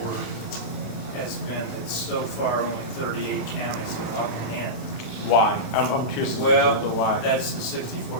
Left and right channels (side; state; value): right; late; 29 ms